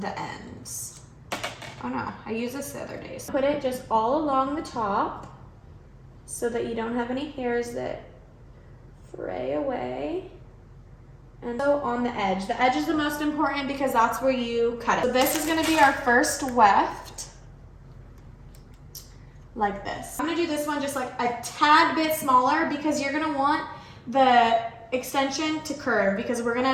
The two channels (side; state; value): both; identical; correlation 1.00